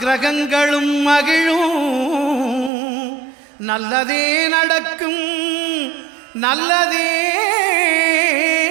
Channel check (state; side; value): drops out; left; at 2.7 s